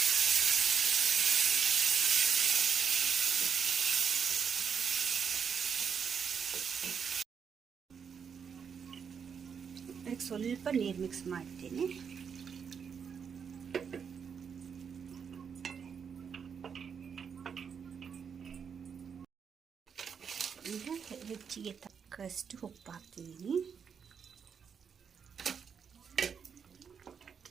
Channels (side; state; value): left; quieter; 6.8 dB